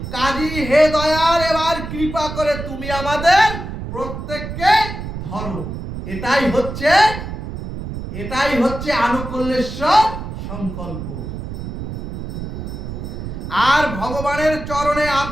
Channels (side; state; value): right; noise; rumble, 7 dB below the sound